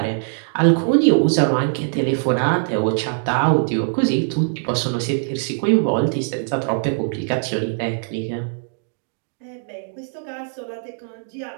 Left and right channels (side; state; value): left; silent; digital silence